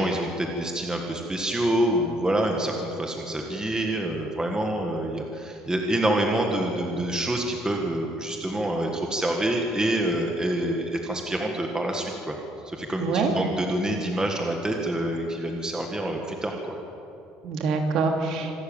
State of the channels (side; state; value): both; normal; correlation 0.70